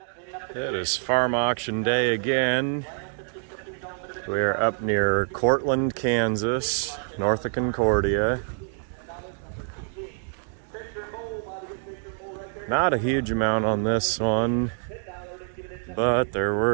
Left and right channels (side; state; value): left; silent; 57 dB below the other